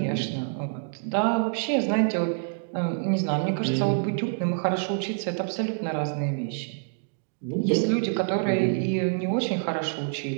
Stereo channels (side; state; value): left; silent; digital silence